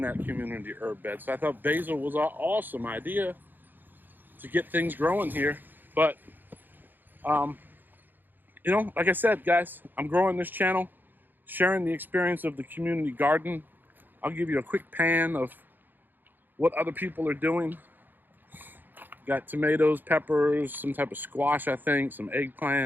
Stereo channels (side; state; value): left; late; 0.090 ms